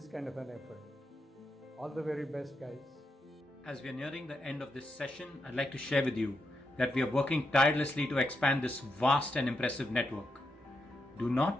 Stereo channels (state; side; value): normal; both; correlation 0.84